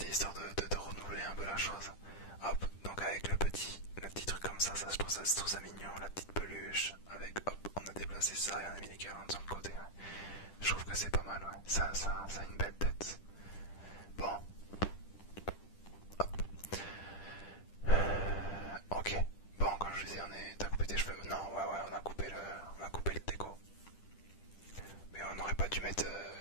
histoire de renouveler un peu la chose. Hop, donc avec le petit truc comme ça, je trouve ça mignon, la petite peluche. c'est ça, et on a mis les guirlandes sur le côté. Ouais. Je trouve que c'est pas mal, ouais. Ça a une belle tête. Bon. Hop. Ok. Bon, comme je vous disais, t'as coupé tes cheveux. Non, ouais, on a coupé le déco. Mais on n'aurait pas dû mettre.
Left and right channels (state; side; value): late; right; 10 ms